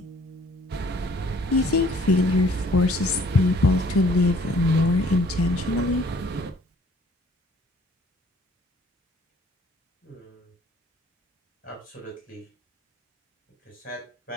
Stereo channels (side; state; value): both; normal; correlation 0.58